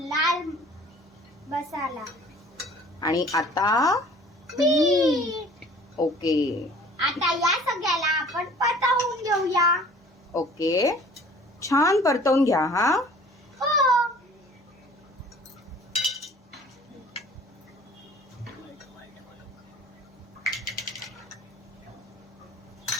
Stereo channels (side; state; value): both; normal; correlation 0.50